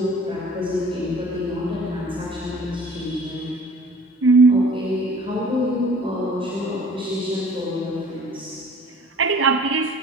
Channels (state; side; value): normal; both; correlation 0.49